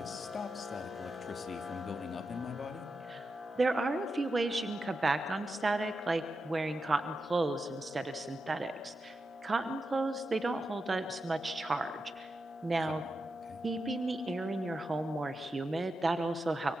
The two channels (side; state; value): both; normal; correlation 0.88